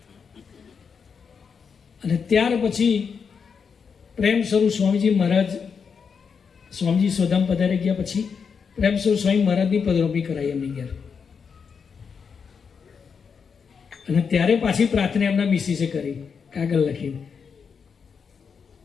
અને ત્યાર પછી પ્રેમ સ્વરૂપ સ્વામીજી મહારાજ, સ્વામીજી સોધામ પધારી ગયા પછી પ્રેમ સ્વરૂપ સ્વામી મહારાજની પધરામણી કરાઈ એમની ઘેર. અને ત્યારે પાછી પ્રાર્થના એમના મિસિસે કરી, કાગળ લખીને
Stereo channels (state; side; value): quieter; right; 6.1 dB